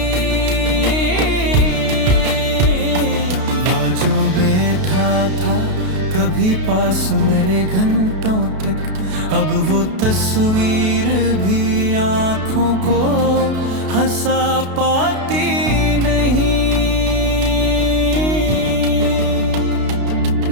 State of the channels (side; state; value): left; late; 32 ms